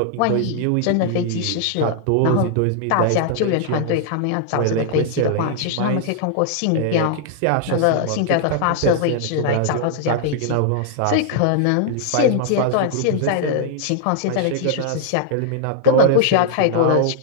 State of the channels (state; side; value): different; both; correlation -0.01